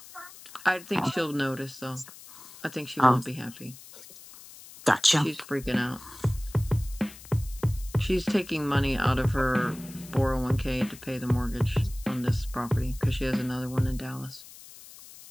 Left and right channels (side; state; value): left; noise; hiss, 18 dB below the sound